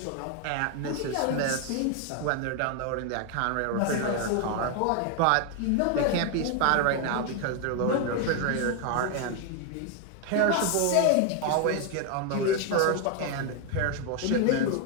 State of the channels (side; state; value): both; different; correlation 0.01